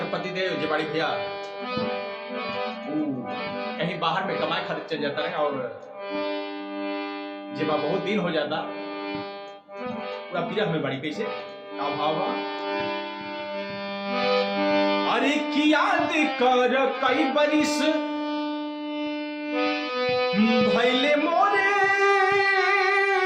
पतिदेव जे बड़ी भैया कहीं बाहर में कमाए खातिर चल जाता है और जब बहुत दिन हो जाता पूरा विरह में बड़ी कैसे का भावा। अरे की याद कर कई बरिस भैले मोरे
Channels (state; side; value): identical; both; correlation 1.00